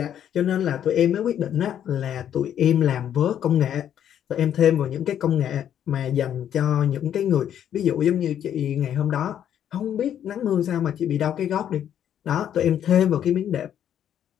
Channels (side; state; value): right; quieter; 9.9 dB